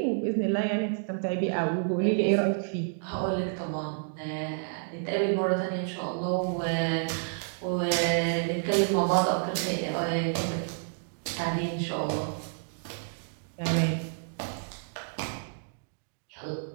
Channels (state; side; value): silent; left; digital silence